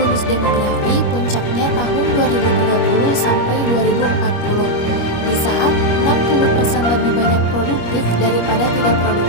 demografi puncaknya tahun 2030 sampai 2040, di saat 60% lebih banyak produktif daripada tidak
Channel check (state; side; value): late; right; 25 ms